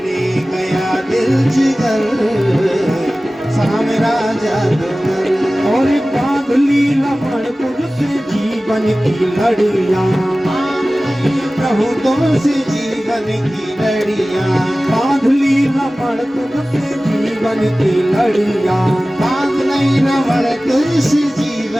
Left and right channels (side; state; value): both; normal; correlation 0.97